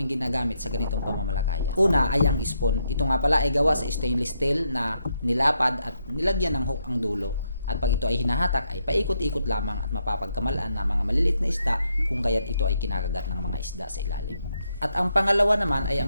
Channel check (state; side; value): inverted; both; correlation -0.78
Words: ginagamit sa ganitong pamamalakaya. Una ay ang spoon. Ito nga pala ay gawa sa stainless steel na nilapad at nilagyan ng hook ang dulo. At pag ito ay hinahatak ay paikot-ikot lamang at mapapagkamalaan ng mga maliliit na isda kung kaya't ito ay kinakagat ng mga isda sa ilalim. At ang pangalawa naman ay